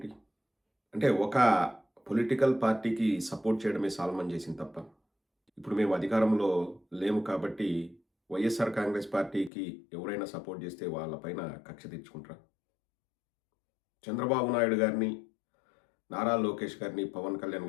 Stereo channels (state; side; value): drops out; right; at 9.5 s